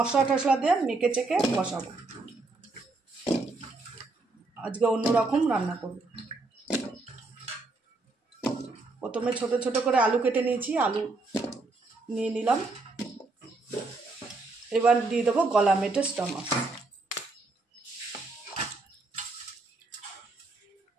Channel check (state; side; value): quieter; left; 3.4 dB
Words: টশলা দিয়ে মেখে চেখে বসাবো। আজকে অন্যরকম রান্না করব। প্রথমে ছোট ছোট করে আলু কেটে নিয়েছি, আলু নিয়ে নিলাম। এবার দিয়ে দেবো গলা মেটে স্টমাস।